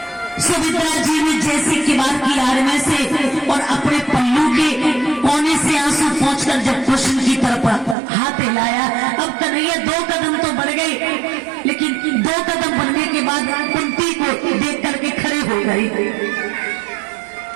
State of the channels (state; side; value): drops out; left; at 8.0 s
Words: सुमित्रा जी ने जैसे किवाड़ की आड़ में से और अपने पल्लू के कोने से आंसू पहुंचकर जब कृष्ण की तरफ हाथ हिलाया, अब कन्हैया 2 कदम तो बढ़ गए, लेकिन 2 कदम बढ़ने के बाद कुंती को देख करके खड़े हो गए।